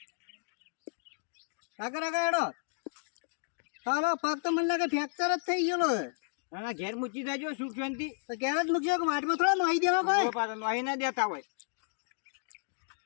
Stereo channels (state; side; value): silent; right; digital silence